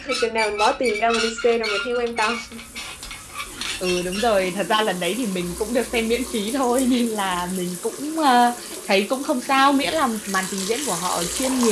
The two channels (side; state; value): both; identical; correlation 1.00